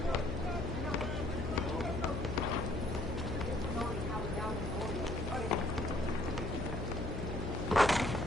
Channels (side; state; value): left; noise; hum, 4 dB below the sound